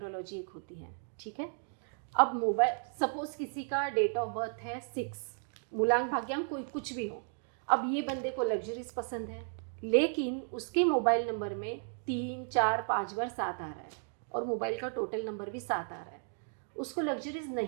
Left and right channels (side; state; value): left; silent; 55 dB below the other